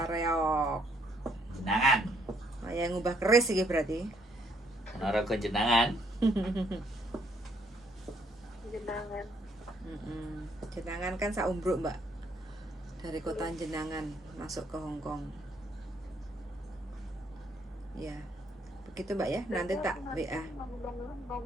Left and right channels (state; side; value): normal; both; correlation 0.69